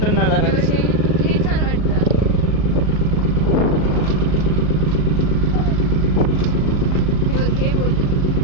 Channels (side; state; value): right; late; 37 ms